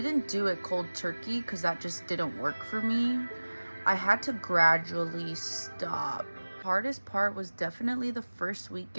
do it cold turkey because that just didn't work for me. I had to gradually stop. The hardest part was definitely the first week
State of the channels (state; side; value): inverted; both; correlation -1.00